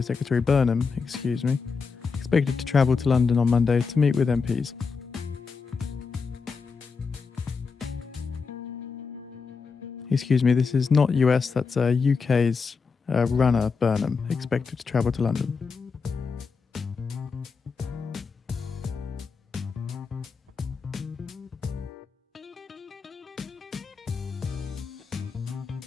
Secretary Burnham, excuse me. Expected to travel to London on Monday to meet with MPs. Excuse me, this is not US, that's UK's runner Burnham, expected to travel to London.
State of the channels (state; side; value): quieter; right; 5.1 dB